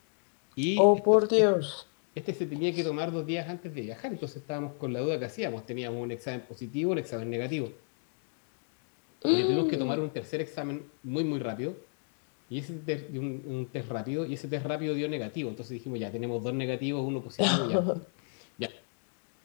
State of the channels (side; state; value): right; silent; 56 dB below the other